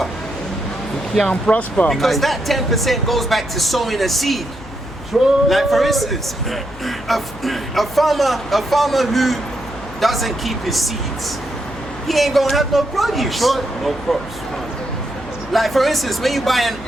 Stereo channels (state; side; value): noise; left; hum, 15 dB below the sound